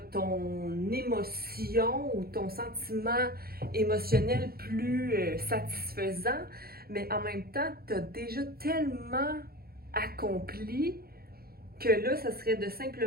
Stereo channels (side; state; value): left; late; 0.44 ms